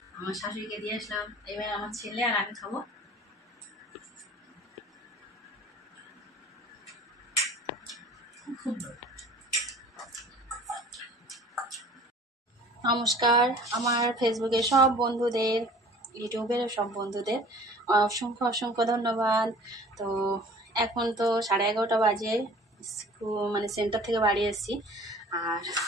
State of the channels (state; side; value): normal; both; correlation 0.47